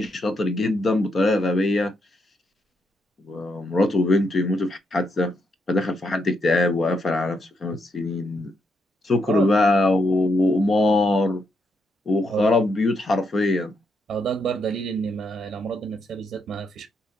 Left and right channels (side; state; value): both; normal; correlation 0.80